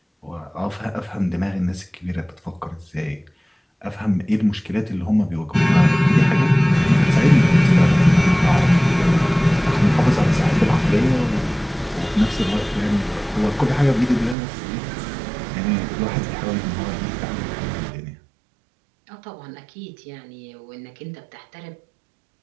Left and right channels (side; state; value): left; drops out; at 14.4 s